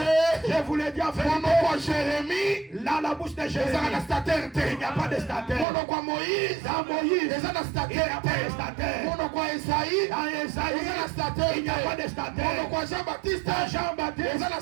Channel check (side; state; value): left; drops out; at 5.7 s